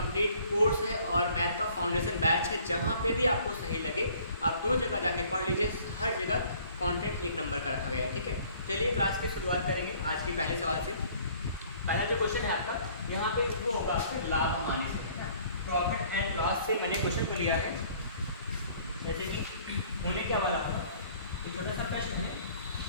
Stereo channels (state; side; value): inverted; both; correlation -0.56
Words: कोर्स है और मैथ का फाउंडेशन बैच है। जहाँ पे भी आपको सही लगे आप दो जगह जाके पढ़ लीजिए, हर जगह कंटेंट एक नंबर का रखा गया है। ठीक है, चलिए क्लास की शुरुआत करेंगे आज के पहले सवाल से। पहला जो क्वेश्चन है आपका यहाँ पे वो होगा आपके लाभ हानि से, प्रॉफिट एंड लॉस से मैंने क्वेश्चन को लिया है। जैसे कि होने क्या वाला होगा, एक छोटा सा प्रश्न है।